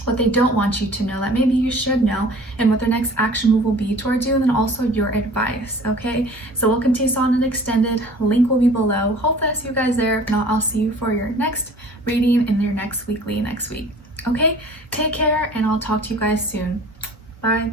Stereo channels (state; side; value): normal; both; correlation 0.47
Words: What they don't want you to know that maybe you should know, and what their next action move will be towards you, and then also your advice. Okay, so we'll continue on and extended. Link will be below. Hopefully I see you guys there. If not, I'll see you for your next reading in your next weekly next week. Okay, take care, and I'll talk to you guys soon. Bye.